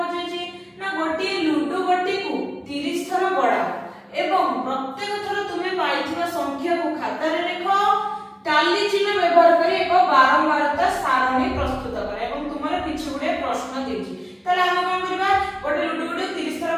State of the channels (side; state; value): both; identical; correlation 1.00